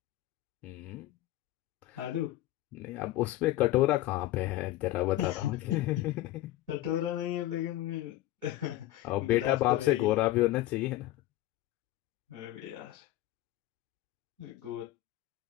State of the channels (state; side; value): quieter; right; 15.8 dB